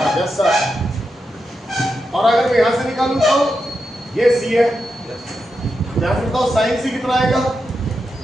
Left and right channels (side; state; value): both; normal; correlation 0.87